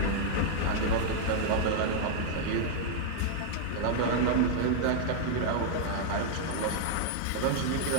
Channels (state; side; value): different; both; correlation -0.01